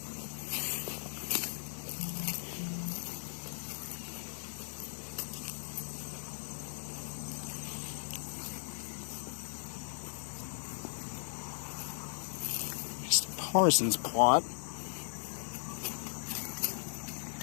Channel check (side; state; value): right; silent; digital silence